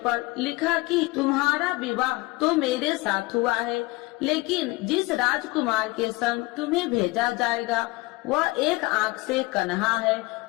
पर लिखा कि तुम्हारा विवाह तो मेरे साथ हुआ है, लेकिन जिस राजकुमार के संग तुम्हें भेजा जाएगा वह एक आंख से कन्हा है।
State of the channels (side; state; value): right; quieter; 22.2 dB